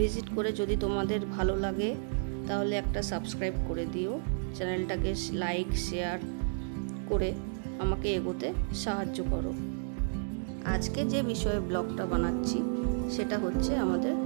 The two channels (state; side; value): silent; left; 57 dB below the other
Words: করে যদি তোমাদের ভালো লাগে তাহলে একটা সাবস্ক্রাইব করে দিও। চ্যানেলটাকে লাইক শেয়ার করে আমাকে এগোতে সাহায্য করো। আজকে যে বিষয়ে ব্লগটা বানাচ্ছি সেটা হচ্ছে আমাদের